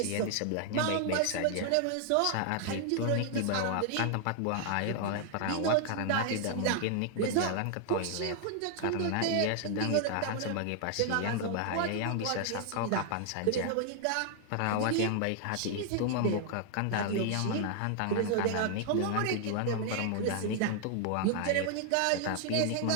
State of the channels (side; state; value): both; different; correlation 0.00